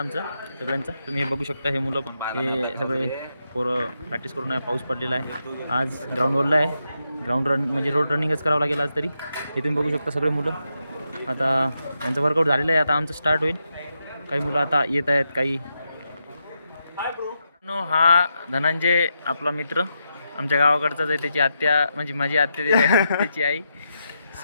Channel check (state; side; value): inverted; both; correlation -0.84